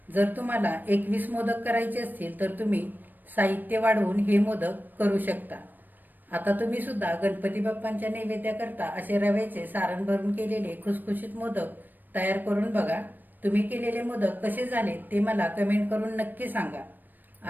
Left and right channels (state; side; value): late; left; 0.090 ms